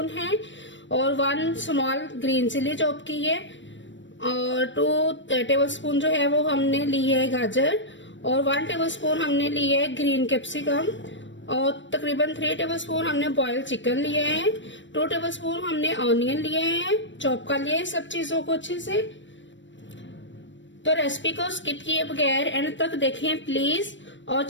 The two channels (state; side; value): late; right; 0.54 ms